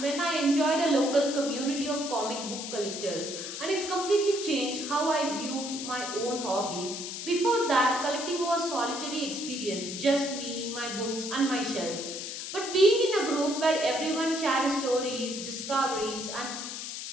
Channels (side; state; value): left; noise; hiss, 7 dB below the sound